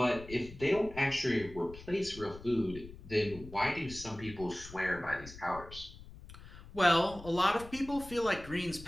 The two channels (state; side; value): noise; left; rumble, 16 dB below the sound